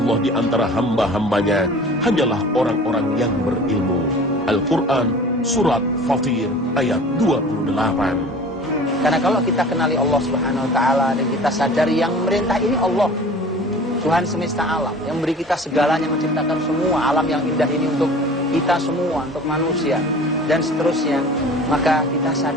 di antara hamba-hambanya hanyalah orang-orang yang berilmu. Al-Quran, Surat Fatir, ayat 28. Karena kalau kita kenali Allah Subhanahu wa Ta'ala dan kita sadari yang memerintah ini Allah, Tuhan semesta alam, yang beri kita segalanya, menciptakan semua alam yang indah ini untuk kita semua, untuk manusia, dan seterusnya, maka kita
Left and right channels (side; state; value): both; normal; correlation 0.43